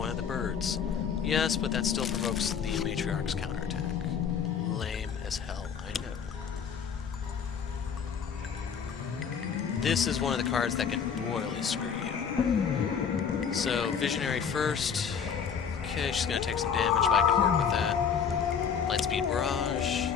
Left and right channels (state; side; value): quieter; right; 7.0 dB